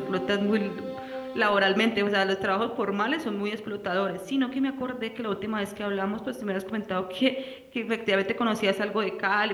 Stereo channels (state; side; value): identical; both; correlation 1.00